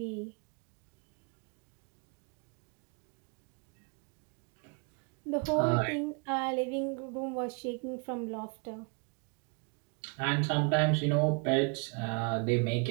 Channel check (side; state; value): left; quieter; 34.8 dB